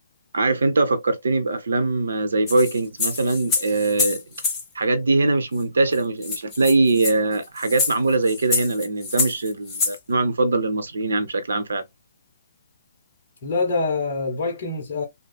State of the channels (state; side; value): inverted; both; correlation -0.76